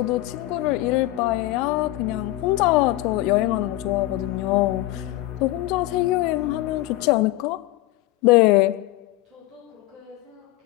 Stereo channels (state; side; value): quieter; right; 16.8 dB